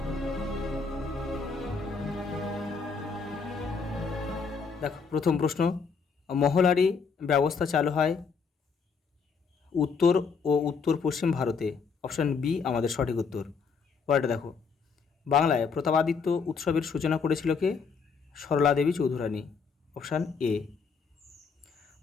দেখো, প্রথম প্রশ্ন, মহলারি ব্যবস্থা চালু হয় উত্তর ও উত্তর পশ্চিম ভারতে। অপশান বি আমাদের সঠিক উত্তর। পরেরটা দেখো, বাংলায় প্রতাপাদিত্য উৎসবের সূচনা করেছিল কে? সরলা দেবী চৌধুরানী। Option A.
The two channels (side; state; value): right; quieter; 5.4 dB